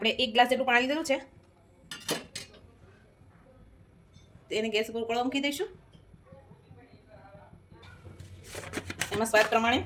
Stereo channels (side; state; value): both; identical; correlation 1.00